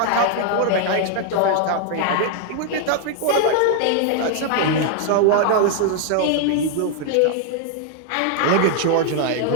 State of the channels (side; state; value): both; different; correlation 0.00